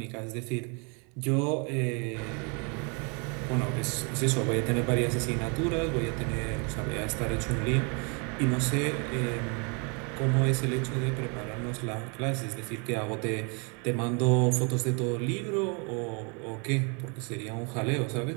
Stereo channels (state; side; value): quieter; left; 34.5 dB